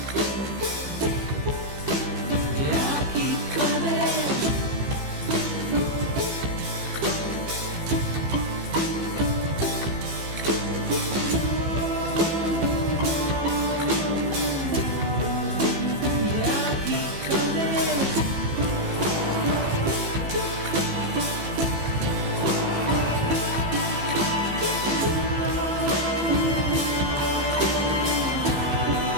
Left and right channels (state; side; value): late; left; 15 ms